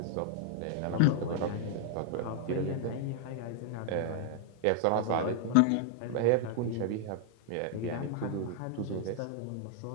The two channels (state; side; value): different; both; correlation 0.00